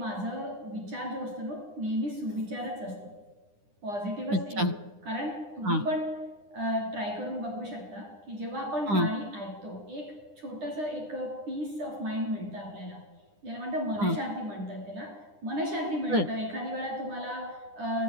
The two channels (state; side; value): late; left; 9.9 ms